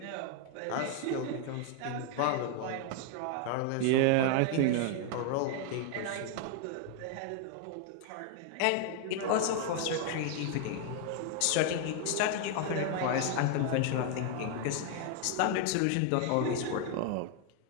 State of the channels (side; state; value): both; different; correlation 0.00